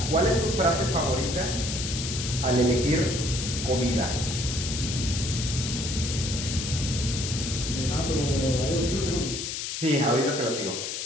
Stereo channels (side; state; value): left; noise; hiss, 4 dB below the sound